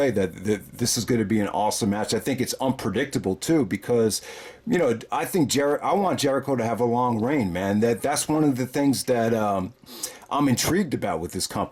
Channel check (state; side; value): identical; both; correlation 1.00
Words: that this is going to be an awesome match. I think it's unpredictable too because, I think I want Jericho to have a long reign, man. That's one of the things that I'm intrigued about with this